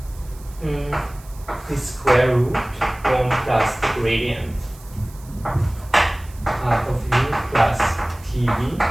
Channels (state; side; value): noise; right; hiss, 23 dB below the sound